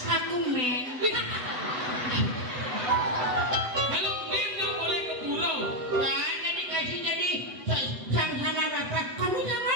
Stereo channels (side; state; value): left; late; 8.0 ms